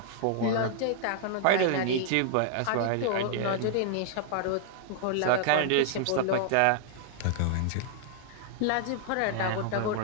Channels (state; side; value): different; both; correlation 0.00